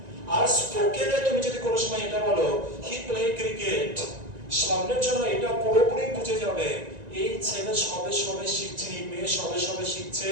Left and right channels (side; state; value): left; late; 1.9 ms